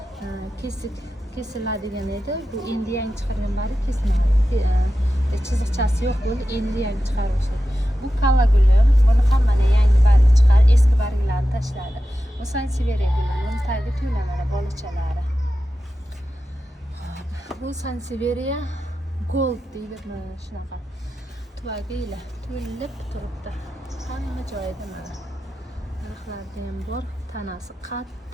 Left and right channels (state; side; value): normal; both; correlation 0.92